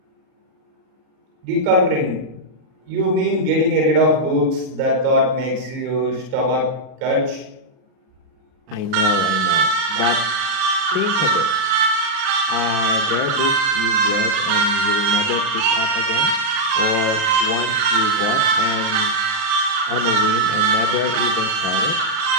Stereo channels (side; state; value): left; late; 38 ms